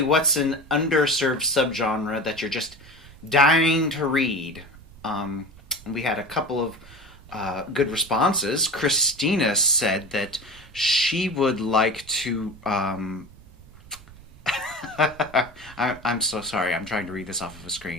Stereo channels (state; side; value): noise; right; rumble, 21 dB below the sound